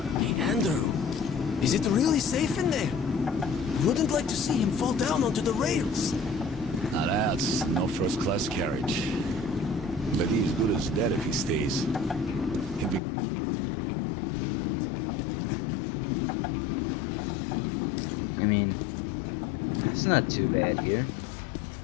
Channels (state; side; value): drops out; right; at 13.0 s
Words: Hey, Andrew. Is it really safe in there? Wouldn't like to see him fall down onto the rails. Now that's no first-class carriage. But he's good as dead if he stays. He'll be going straight to the Bianca, and that's a one-way ticket. I mean, it's not too bad here.